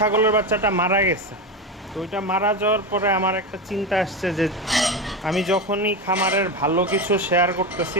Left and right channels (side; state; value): both; normal; correlation 0.17